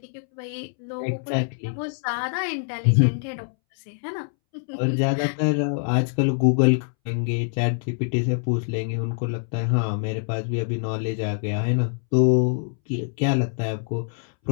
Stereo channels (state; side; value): silent; right; 62 dB below the other